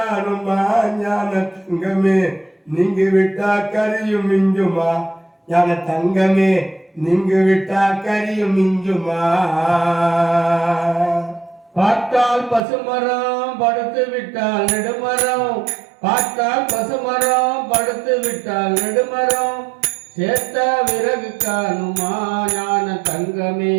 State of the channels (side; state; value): left; drops out; at 12.6 s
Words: ஞான தங்கமே நீங்க விட்டா கரியும் மிஞ்சுமா, ஞான தங்கமே நீங்க விட்டா கரியும் மிஞ்சுமா. பார்த்தால் பசுமரம் படுத்து விட்டால் நெடுமரம், பார்த்தால் பசுமரம் படுத்து விட்டால் நெடுமரம், சேர்த்த விறகு காணுமா ஞான தங்கமே